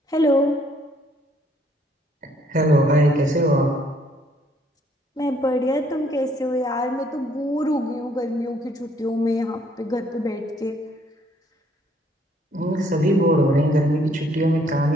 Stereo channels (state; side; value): normal; both; correlation 0.65